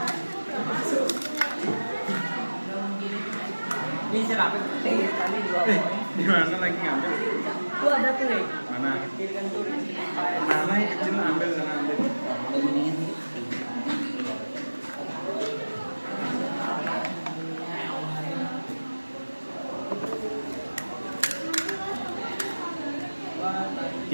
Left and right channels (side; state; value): both; inverted; correlation -1.00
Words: Ini cerapin kali 2 poin. Di mana lagi ngambil? Tuh ada tuh, Mana? kirikan tuh. Mana yang kecil ambil sana ambil.